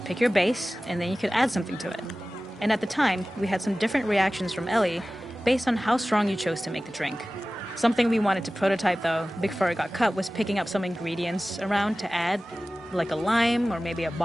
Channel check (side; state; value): both; normal; correlation 0.97